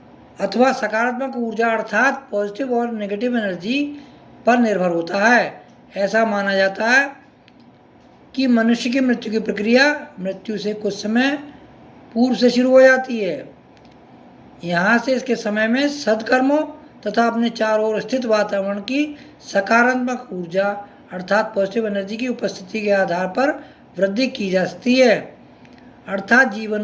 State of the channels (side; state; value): both; identical; correlation 1.00